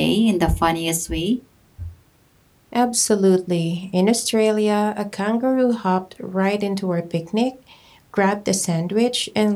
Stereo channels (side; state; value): both; identical; correlation 1.00